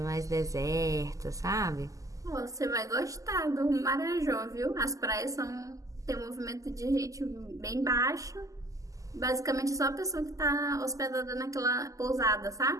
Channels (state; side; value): late; left; 0.16 ms